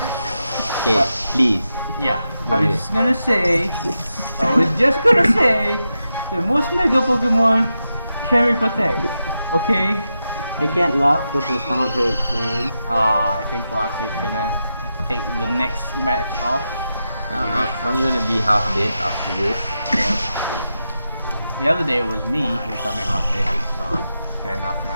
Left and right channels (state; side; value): inverted; both; correlation -0.88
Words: Okay, But- please. Yeah, Go I was ahead. just gonna say, the most Mega Pokemon carry Protect. Okay? I can't laugh because my stomach hurts, man. I think Wax is gonna take the next match off. I'm gonna be half dead after this. Yep. The other day it was me becoming half dead, so fair enough